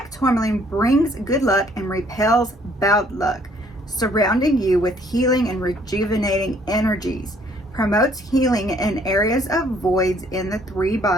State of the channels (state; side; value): normal; both; correlation 0.62